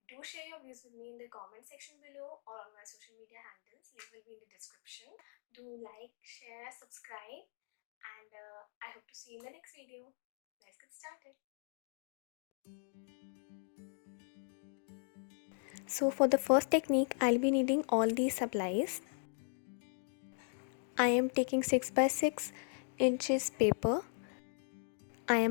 do share your views with me in the comment section below or on my social media handles. Link will be in the description. Do like, share, subscribe, and I hope to see you in the next video. Let's get started. So for the first technique, I'll be needing all these supplies. I am taking 6 by 6 inches paper. I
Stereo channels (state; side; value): silent; right; 52 dB below the other